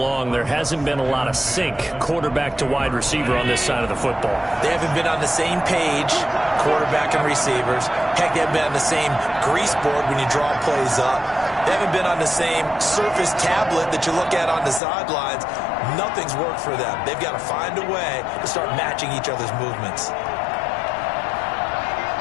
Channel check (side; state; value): right; drops out; at 14.8 s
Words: there hasn't been a lot of sync quarterback to wide receiver on this side of the football. They haven't been on the same page, quarterback and receivers. Heck, they haven't been on the same grease board when you draw plays up. They haven't been on the same surface tablet that you look at on the sidelines. Nothing's worked for them. They've got to find a way to start matching each other's movements.